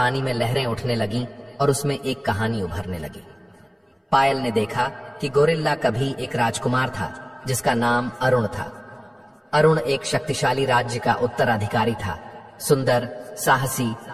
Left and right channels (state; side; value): identical; both; correlation 1.00